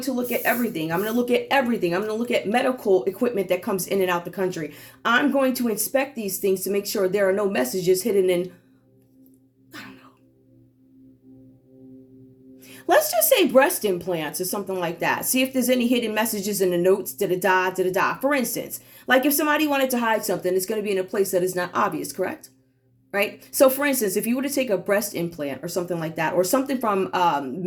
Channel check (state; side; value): identical; both; correlation 1.00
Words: to look at everything. I'm going to look at everything. I'm going to look at medical equipment that comes in and out the country. I'm going to inspect these things to make sure there are no messages hidden in, I don't know. Let's just say breast implants or something like that. See if there's any hidden messages in the notes, da-da-da, da-da-da. For instance, like if somebody wanted to hide something, it's going to be in a place that is not obvious, correct? Right? So for instance, if you were to take a breast implant or something like that, or something from